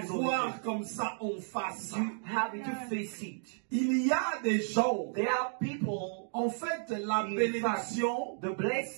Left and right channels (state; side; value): silent; left; digital silence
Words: voir comme ça en face. Il y a des gens, en fait, la bénédiction